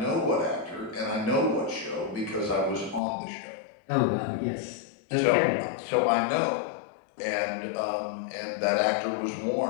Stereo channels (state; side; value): drops out; right; at 3.0 s